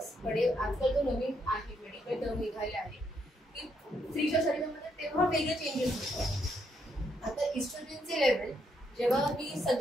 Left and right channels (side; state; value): both; normal; correlation 0.75